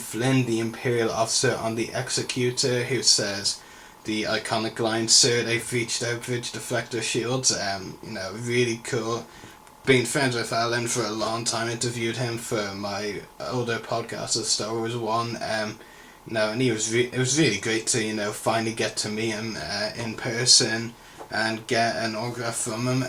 the Imperial officer on the Executor, who says the iconic line, "Sir, they've reached our bridge deflector shields." You know, really cool. Been friends with Alan for a long time, interviewed him for my older podcast, the Star Wars one. And it was really great to, you know, finally get to meet him in person and get an autograph from him.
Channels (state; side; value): identical; both; correlation 1.00